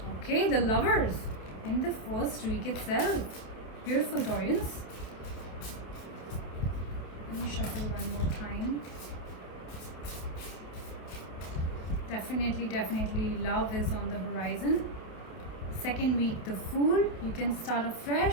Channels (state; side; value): late; right; 28 ms